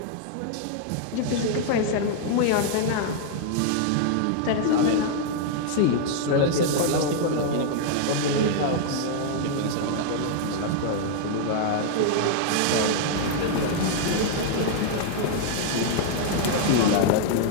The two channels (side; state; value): both; different; correlation -0.01